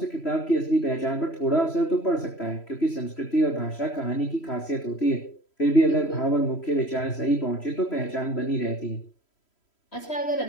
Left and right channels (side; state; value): right; late; 3.1 ms